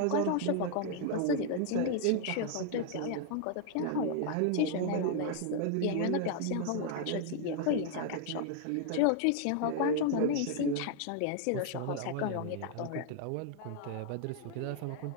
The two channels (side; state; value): both; different; correlation 0.00